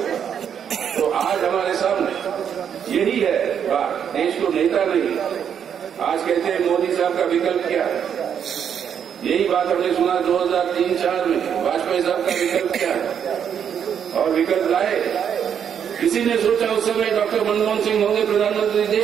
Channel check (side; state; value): left; quieter; 8.2 dB